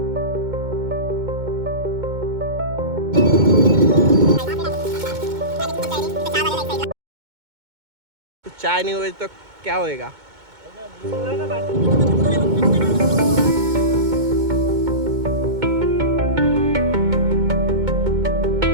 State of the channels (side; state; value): left; late; 2.2 ms